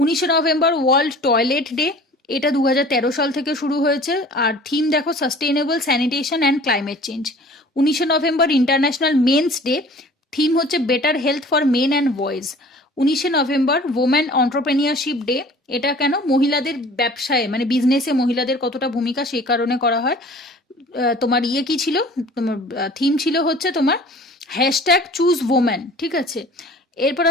November world toilet day, এটা 2013 সাল থেকে শুরু হয়েছে, আর থিম দেখো sustainable sanitation and climate change. 19 November international men's day, theme হচ্ছে better health for men and boys. 19 November women entrepreneurship day, এটা কেন, মহিলাদের ব্যবসায় মানে বিজনেসে মহিলাদের কতটা ভূমিকা, সেই কারণে করা হয়। তোমার কি ছিল, তোমার থিম ছিল হচ্ছে তোমার হ্যাশট্যাগ চুজ ওমেন, ঠিক আছে। এরপর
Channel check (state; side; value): normal; both; correlation 0.47